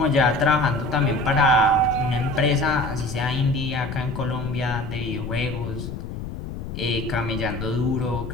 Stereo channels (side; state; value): left; noise; rumble, 8 dB below the sound